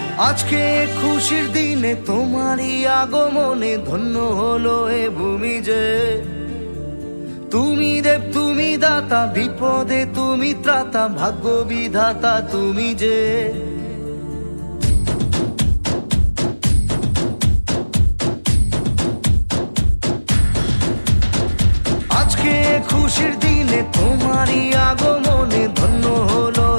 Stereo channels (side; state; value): both; inverted; correlation -1.00